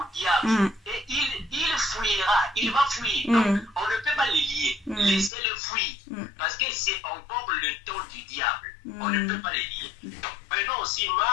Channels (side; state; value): right; drops out; at 5.3 s